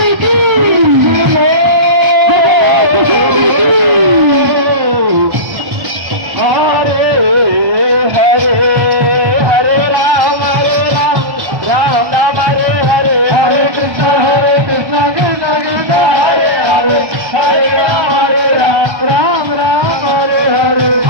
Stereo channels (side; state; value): left; late; 1.3 ms